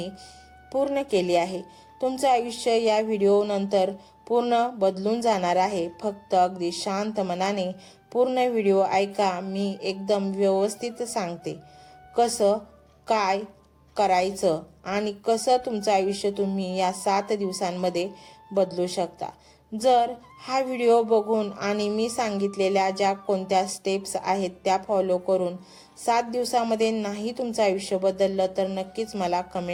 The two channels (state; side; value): identical; both; correlation 1.00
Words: पूर्ण केली आहे. तुमचं आयुष्य या व्हिडिओनंतर पूर्ण बदलून जाणार आहे. फक्त अगदी शांत मनाने पूर्ण व्हिडिओ ऐका. मी एकदम व्यवस्थित सांगते कसं काय करायचं आणि कसं तुमचं आयुष्य तुम्ही या 7 दिवसांमध्ये बदलू शकता. जर हा व्हिडिओ बघून आणि मी सांगितलेल्या ज्या कोणत्या स्टेप्स आहेत त्या फॉलो करून 7 दिवसामध्ये नाही तुमचं आयुष्य बदललं तर नक्कीच मला